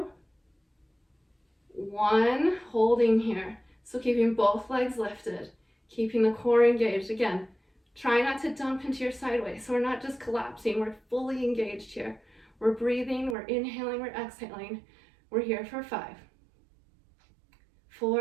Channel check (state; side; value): drops out; left; at 13.4 s